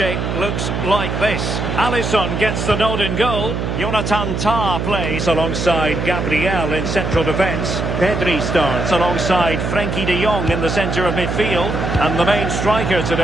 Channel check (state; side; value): noise; right; hum, 2 dB below the sound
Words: looks like this. Alisson gets the nod in goal. Jonathan Tah plays alongside Gabriel in central defence. Pedri starts alongside Frenkie de Jong in the centre of midfield. And the main striker